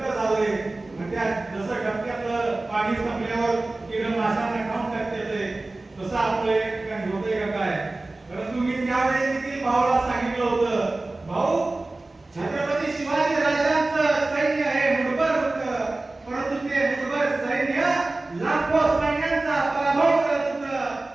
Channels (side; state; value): left; quieter; 3.0 dB